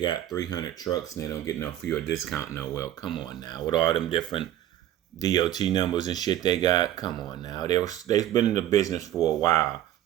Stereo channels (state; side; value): quieter; left; 12.6 dB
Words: 300 trucks and they don't get no fuel discount. No, well, come on now. With all them different DOT numbers and shit they got, come on now. They've been in the business for a while,